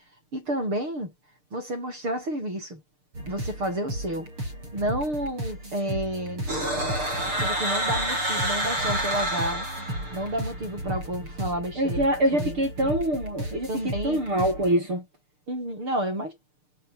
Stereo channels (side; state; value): left; late; 6.7 ms